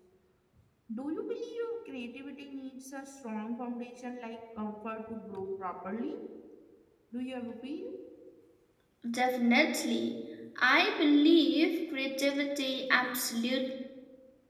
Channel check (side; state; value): both; identical; correlation 1.00